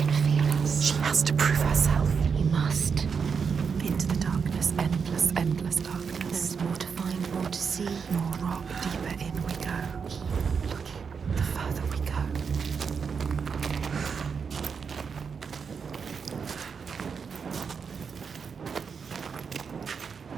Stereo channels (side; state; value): left; quieter; 6.0 dB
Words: can feel us. She has to prove herself. You must. Into the darkness, endless, endless darkness. There's more to find, more to see. More rock, deeper in we go. Look, the further we go.